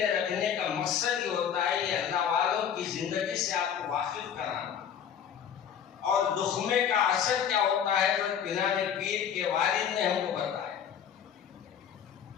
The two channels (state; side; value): quieter; right; 8.5 dB